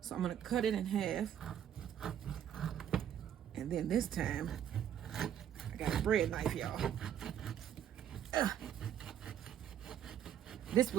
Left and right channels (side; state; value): left; quieter; 9.9 dB